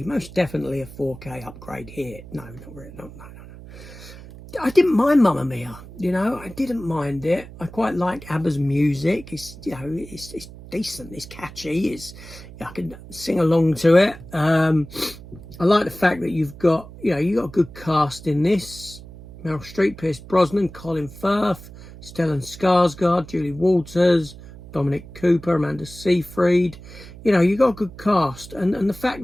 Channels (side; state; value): right; noise; hum, 16 dB below the sound